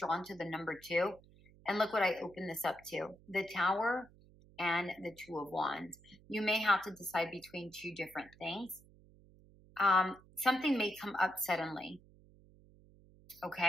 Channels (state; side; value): noise; right; hum, 25 dB below the sound